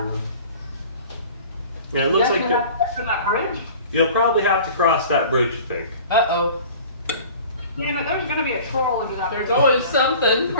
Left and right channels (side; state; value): both; inverted; correlation -0.44